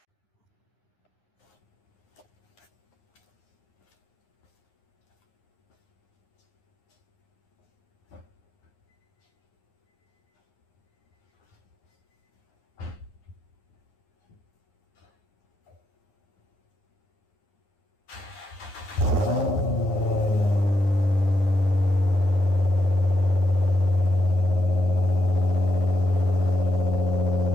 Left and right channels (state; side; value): late; right; 10 ms